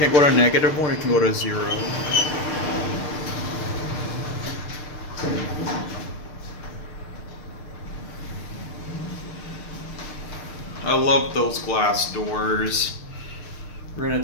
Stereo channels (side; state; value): right; late; 6.6 ms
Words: go to -1, it can go to 0. I love those glass doors. We're gonna